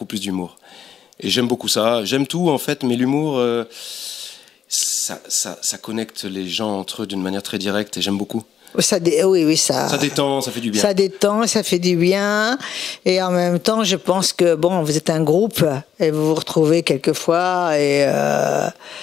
plus d'humour. Et j'aime beaucoup ça. J'aime tout, en fait, mais l'humour, ça connecte les gens entre eux d'une manière très directe, et j'aime beaucoup. Ça détend, ça fait du bien. Ça détend, ça fait du bien. Et en même temps, je pense que, bon, vous êtes un groupe et vous vous retrouvez quelquefois. Et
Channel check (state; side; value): quieter; right; 8.7 dB